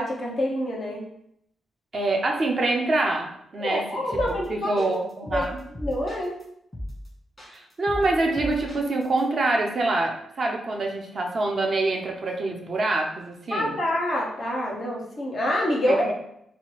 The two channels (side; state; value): both; normal; correlation 0.85